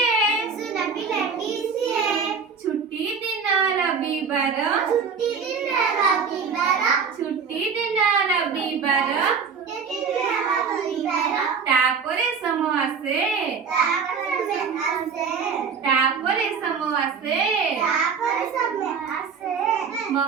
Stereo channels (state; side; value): quieter; left; 5.9 dB